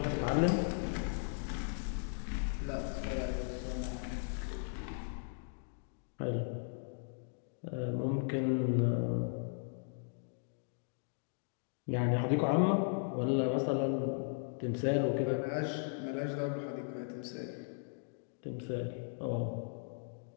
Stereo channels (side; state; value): right; silent; digital silence